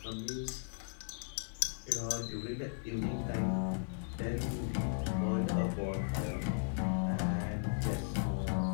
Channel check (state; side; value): silent; right; digital silence